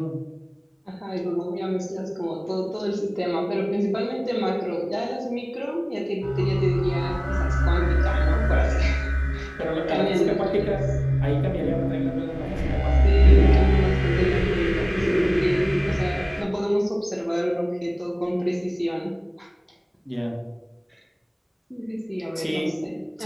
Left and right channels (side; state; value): both; identical; correlation 1.00